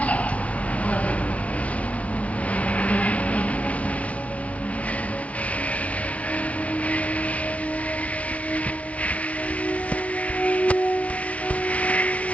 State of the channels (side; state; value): right; late; 0.066 ms